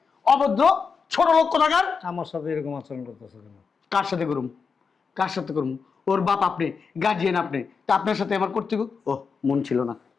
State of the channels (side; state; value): right; quieter; 5.5 dB